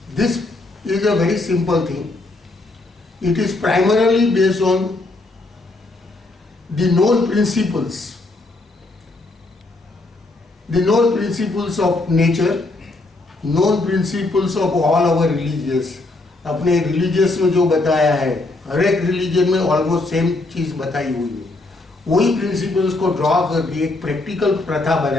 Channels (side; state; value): right; quieter; 3.0 dB